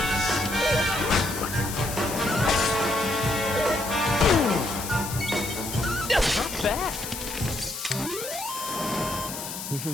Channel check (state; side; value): noise; left; hiss, 8 dB below the sound